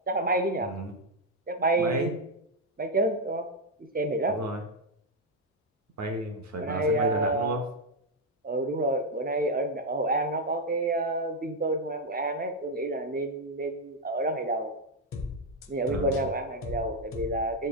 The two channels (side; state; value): both; normal; correlation 0.02